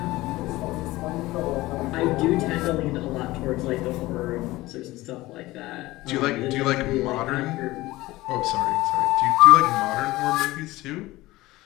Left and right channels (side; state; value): right; quieter; 18.7 dB